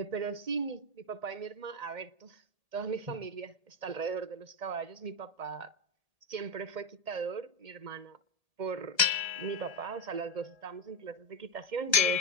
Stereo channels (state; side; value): late; left; 1.7 ms